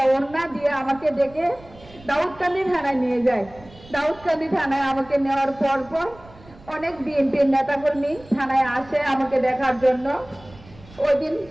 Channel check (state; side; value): noise; right; rumble, 23 dB below the sound